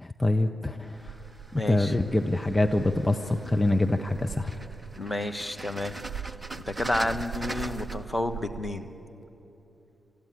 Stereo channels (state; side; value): normal; both; correlation 0.93